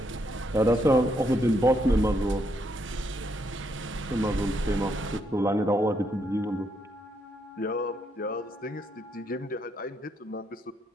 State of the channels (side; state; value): both; normal; correlation 0.76